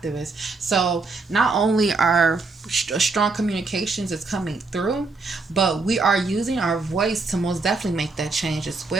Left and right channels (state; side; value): quieter; left; 3.9 dB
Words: So not only are strong communications is coming through, but we are using our voice to most definitely make that change as